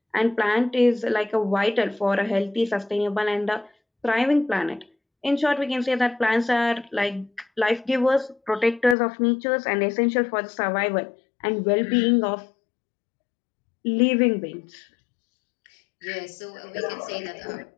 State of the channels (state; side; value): drops out; right; at 9.0 s